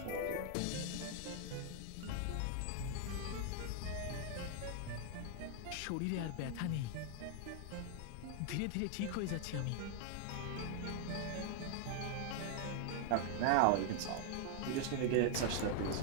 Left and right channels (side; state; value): both; different; correlation 0.00